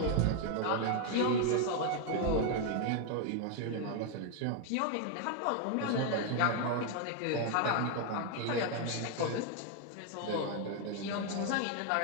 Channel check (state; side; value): different; both; correlation 0.00